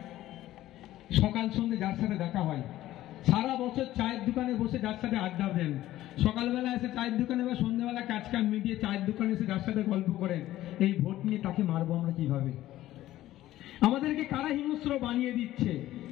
সকাল সন্ধ্যে যার সাথে দেখা হয়, সারা বছর চায়ের দোকানে বসে যার সাথে আড্ডা দেন, সকালবেলা এসে চায়ের দোকানে বা সন্ধ্যাবেলা কাজ কাম মিটিয়ে চায়ের দোকানে এসে যার সাথে গল্প করেন, এই ভোট নিয়ে তাকে মারবো আমরা কিভাবে? আমাদেরকে কারা হিংস্র বানিয়ে দিচ্ছে?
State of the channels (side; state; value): right; quieter; 14.6 dB